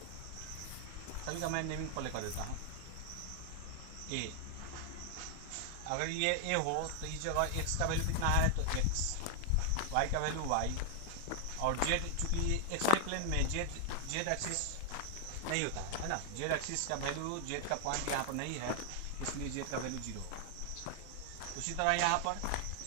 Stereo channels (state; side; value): different; both; correlation 0.00